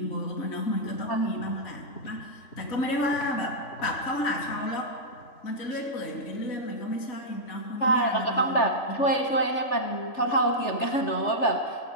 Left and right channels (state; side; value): late; right; 3.3 ms